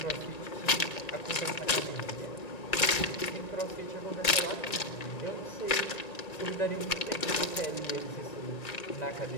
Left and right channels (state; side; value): late; right; 2.3 ms